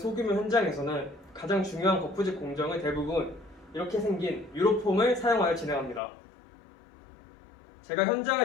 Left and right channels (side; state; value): right; drops out; at 6.0 s